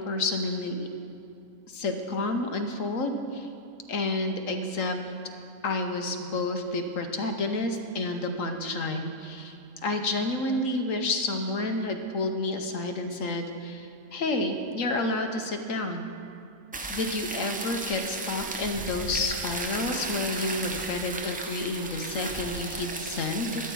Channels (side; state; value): both; normal; correlation -0.05